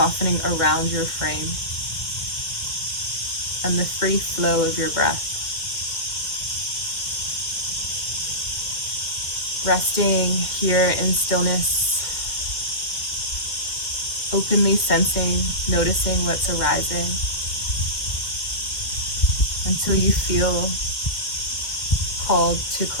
around your frame, and the free flow of your breath. Resting here in stillness, openly sensing, noticing what's arising until you feel called to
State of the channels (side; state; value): right; late; 2.1 ms